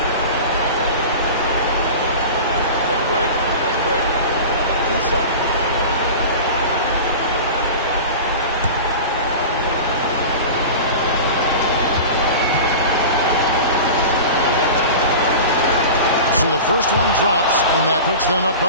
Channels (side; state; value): both; inverted; correlation -0.33